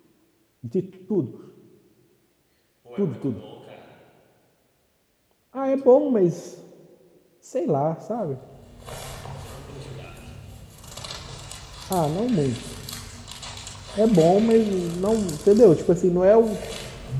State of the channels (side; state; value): both; identical; correlation 1.00